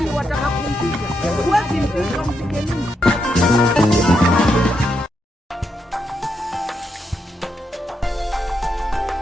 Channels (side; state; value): both; normal; correlation 0.82